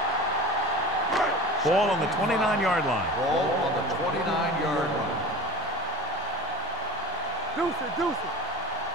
Ball on the 29-yard line. Ball on the 29-yard line. Deuce it, deuce it.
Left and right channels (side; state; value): both; normal; correlation 0.35